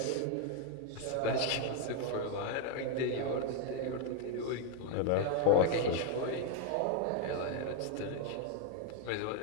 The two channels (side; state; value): both; different; correlation 0.00